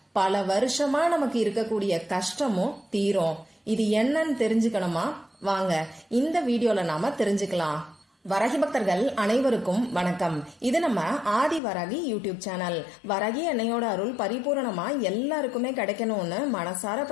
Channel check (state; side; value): drops out; right; at 11.6 s